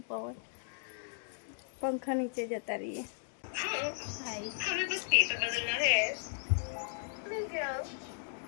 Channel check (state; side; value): silent; right; digital silence